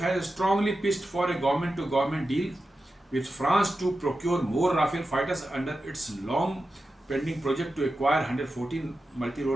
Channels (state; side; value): normal; both; correlation 0.91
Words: has strongly pitched for a government to government deal with France to procure more Rafale fighters under its long pending project to acquire 114